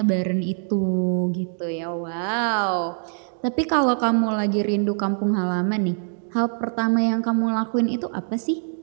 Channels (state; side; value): silent; left; 63 dB below the other